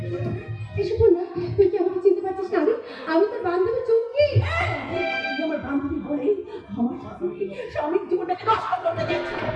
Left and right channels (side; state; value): both; identical; correlation 1.00